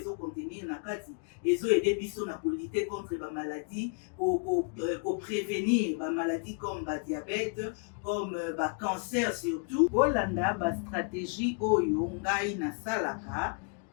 na kati ezoede biso na kolite contre ba maladie prévenir ba maladie comme ba diabète comme ba cancer surtout. Bolanda ba stratégie oyo ngai nasalaka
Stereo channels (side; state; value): right; quieter; 37.7 dB